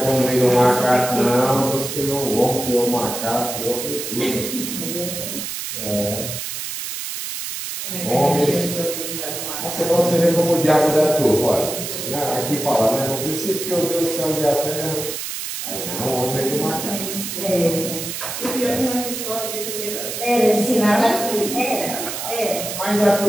como meio do macaco, não. Deus criou o homem, criou o macaco, criou foi tudo. Você vê como o diabo dá tudo, olha. Aqui fala, né? No princípio criou Deus os céus e a terra. Aí não, o homem veio do macaco. O pior que nessa história de primeira. Ensinava assim, Mas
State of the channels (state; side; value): noise; right; hiss, 6 dB below the sound